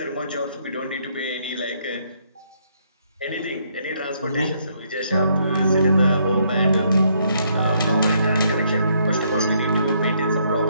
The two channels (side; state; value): both; inverted; correlation -0.71